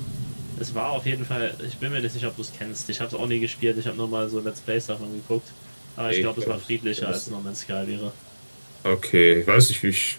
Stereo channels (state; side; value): inverted; both; correlation -1.00